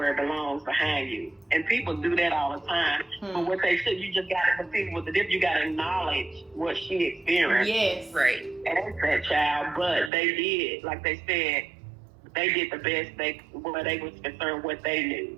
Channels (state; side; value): drops out; left; at 10.1 s